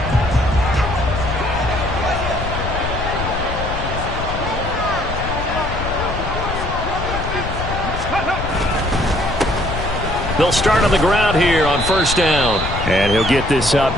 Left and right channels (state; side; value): noise; left; rumble, 6 dB below the sound